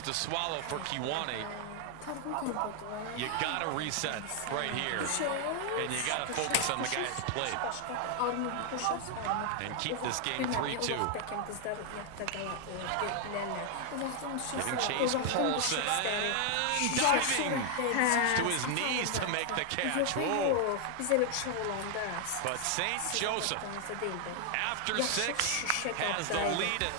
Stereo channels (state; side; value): different; both; correlation 0.00